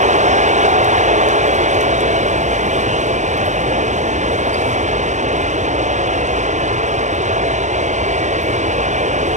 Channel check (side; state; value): left; late; 0.34 ms